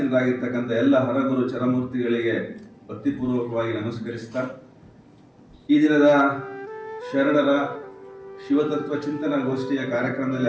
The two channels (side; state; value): both; identical; correlation 1.00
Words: ಎಲ್ಲ ಹರಗುರು ಚರಮೂರ್ತಿಗಳಿಗೆ ಭಕ್ತಿಪೂರ್ವಕವಾಗಿ ನಮಸ್ಕರಿಸ್ತಾ ಈ ದಿನದ ಶರಣರ ಶಿವತತ್ವ ಚಿಂತನಾ ಗೋಷ್ಠಿಯ